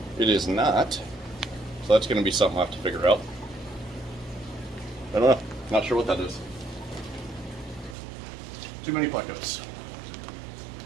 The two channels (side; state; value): left; drops out; at 8.0 s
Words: It is not, so that's going to be something I have to figure out. I don't know. Not sure what that is. Too many plecos.